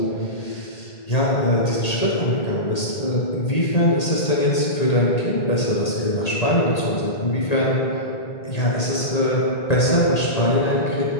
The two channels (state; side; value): late; right; 1.8 ms